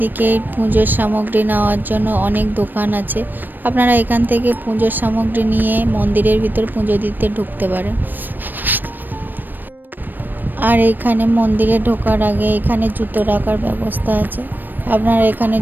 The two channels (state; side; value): late; left; 0.091 ms